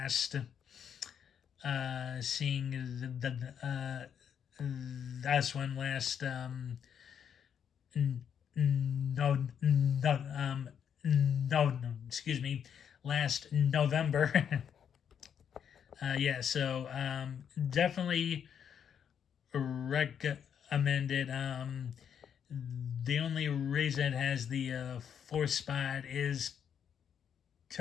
seeing this one last no no no excuse me, last November. Yeah, so definitely recommend it. The only reason it has the fourth spot is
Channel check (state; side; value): quieter; right; 8.1 dB